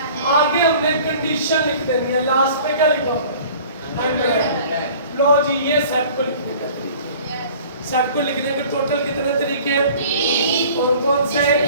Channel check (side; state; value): both; inverted; correlation -0.47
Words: आगे हमने कंडीशन लिख देनी है, लास्ट पे क्या लिखा होगा? लो जी, ये सेट को लिखने का, सेट को लिखने के टोटल कितने तरीके हैं? कौन से?